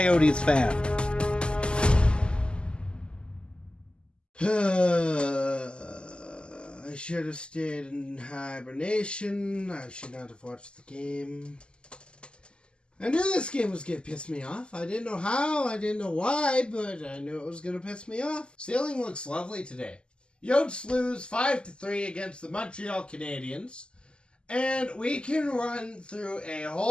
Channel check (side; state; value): right; late; 0.050 ms